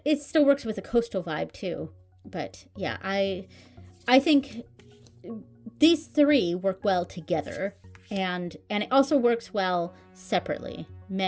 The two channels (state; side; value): identical; both; correlation 1.00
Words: still works with a coastal vibe too. But yeah, I think these three work well together, and it also works well separately.